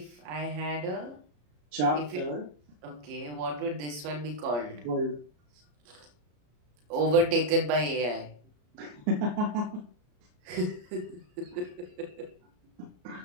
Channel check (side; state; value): left; late; 33 ms